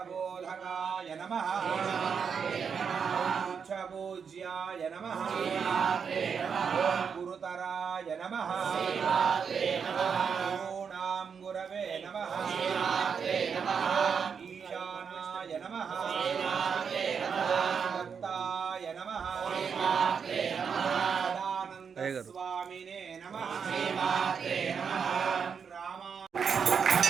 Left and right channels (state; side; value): quieter; left; 6.5 dB